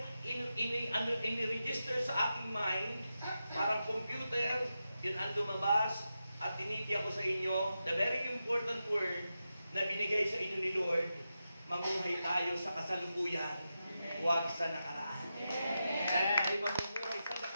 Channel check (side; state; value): both; inverted; correlation -0.89